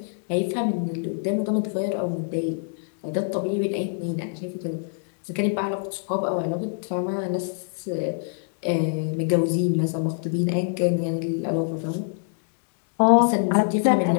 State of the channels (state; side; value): silent; right; 62 dB below the other